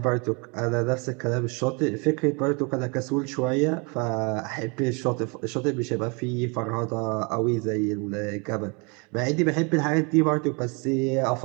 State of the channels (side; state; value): left; quieter; 31.8 dB